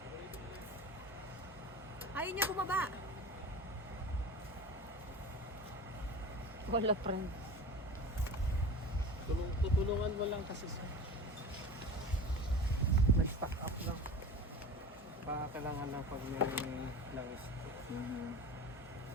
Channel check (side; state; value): both; normal; correlation 0.34